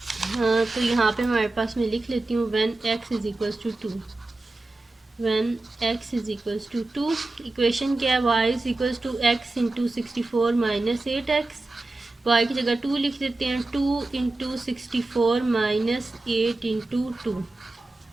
हाँ, तो यहाँ पे हमारे पास मैं लिख लेती हूँ when x is equals to 2, when x is equals to 2, equation क्या है, y is equals to x into 64 minus 8x, y की जगह 2 लिख देते हैं, 2 इंटू 64 माइनस 8 इंटू 2,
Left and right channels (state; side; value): quieter; left; 3.0 dB